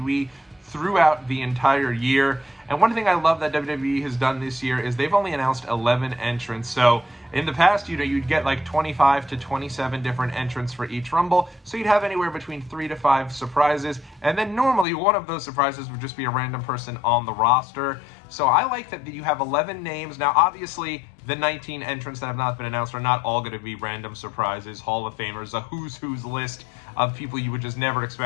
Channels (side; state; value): right; drops out; at 14.9 s